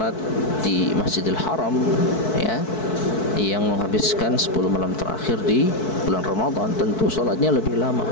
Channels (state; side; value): late; right; 4.6 ms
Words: di Masjidil Haram, ya, yang menghabiskan 10 malam terakhir di bulan Ramadan, tentu salatnya lebih lama,